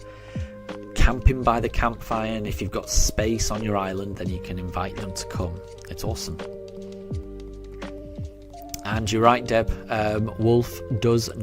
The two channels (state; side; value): identical; both; correlation 1.00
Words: camping by the campfire, and if you've got space on your island, then you can invite them to come. It's awesome. And you're right, Deb. Wolf does